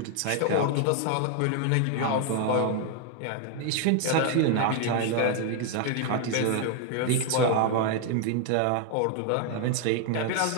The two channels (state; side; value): different; both; correlation 0.00